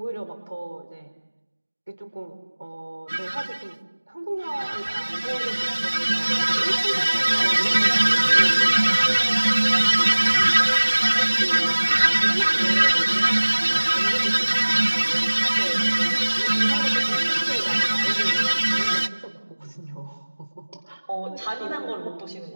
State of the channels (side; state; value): both; inverted; correlation -1.00